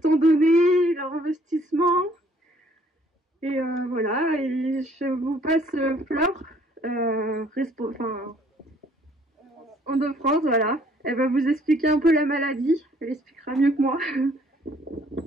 temps donné, leur investissement. Et voilà, et je vous passe Fleur, en de France, voilà. Elle va vous expliquer un peu la maladie, elle expliquera mieux que moi.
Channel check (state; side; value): normal; both; correlation 0.61